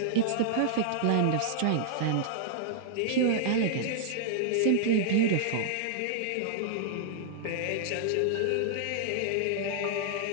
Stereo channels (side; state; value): both; different; correlation -0.01